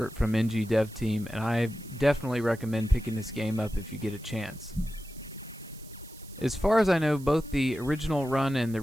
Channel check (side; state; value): right; noise; hiss, 21 dB below the sound